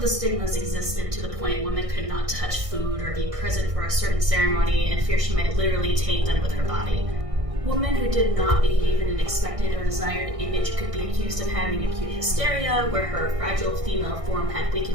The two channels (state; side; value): late; left; 1.6 ms